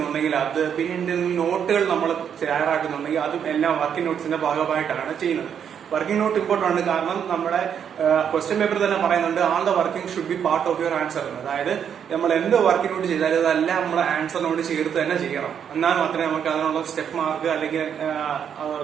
അത്, പിന്നെ എന്തെങ്കിലും നോട്ടുകൾ നമ്മൾ തയ്യാറാക്കുന്നുണ്ടെങ്കിൽ അതും എല്ലാം വർക്കിംഗ് നോട്ട്സിന്റെ ഭാഗമായിട്ടാണ് ചെയ്യുന്നത്. വർക്കിംഗ് നോട്ട് ഇമ്പോർട്ടന്റ് ആണ്. കാരണം നമ്മുടെ ക്വസ്റ്റ്യൻ പേപ്പർ തന്നെ പറയുന്നുണ്ട്, all the working should be part of your answer. അതായത് നമ്മൾ എന്ത് വർക്കിംഗ് നോട്ട് ചെയ്താലും അതെല്ലാം നമ്മുടെ ആൻസറിനോട് ചേർത്ത് തന്നെ ചെയ്യണം. എന്നാൽ മാത്രമേ നമുക്ക് അതിനുള്ള സ്റ്റെപ്പ് മാർക്ക് അല്ലെങ്കിൽ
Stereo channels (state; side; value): quieter; left; 8.1 dB